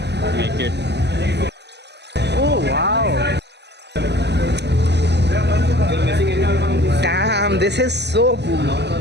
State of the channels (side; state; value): left; late; 0.50 ms